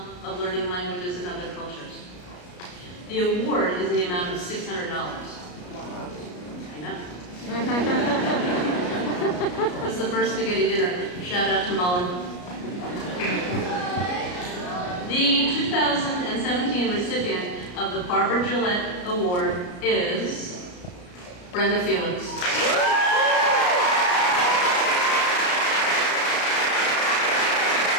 of learning languages and other cultures. The award is in the amount of $600. I know. This is the first spaghetti dinner. Shout out to Mullen. The 2017 recipient of the Barbara Gillette Award is Brenda Felix.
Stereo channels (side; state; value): right; late; 33 ms